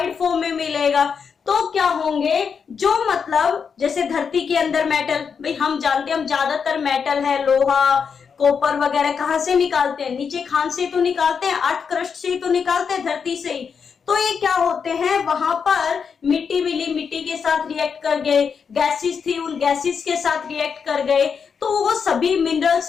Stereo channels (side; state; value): right; quieter; 6.3 dB